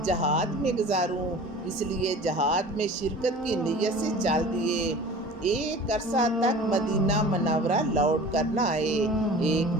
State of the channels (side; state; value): both; normal; correlation 0.41